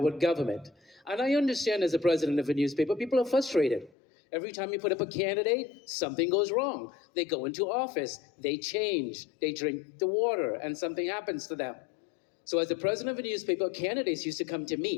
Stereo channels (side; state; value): right; drops out; at 3.9 s